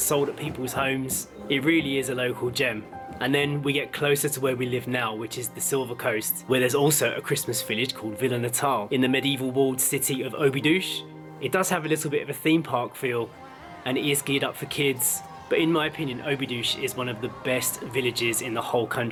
at people's homes. It really is a local gem. And then we get closer to where we live now, which is the Silver Coast, where there's also a Christmas village called Vila Natal in the medieval walled city of Óbidos. It does have a little bit of a theme park feel, and it is geared up for kids. But in my opinion, Óbidos is one of the best villages in the whole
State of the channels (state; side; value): identical; both; correlation 1.00